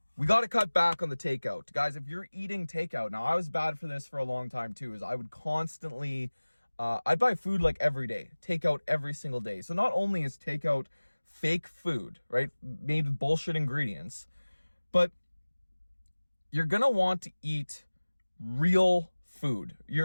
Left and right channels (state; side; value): inverted; both; correlation -1.00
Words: We got to cut back on the takeout. Guys, if you're eating takeout, now I was bad for this for a long time too, is I would constantly, I'd buy food like every day, takeout every single day. So not only is takeout fake food, right, made with bullshit ingredients, but you're going to want to eat real food.